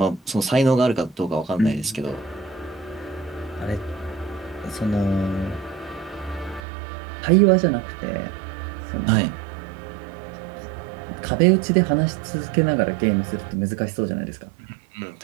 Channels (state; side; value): drops out; left; at 6.6 s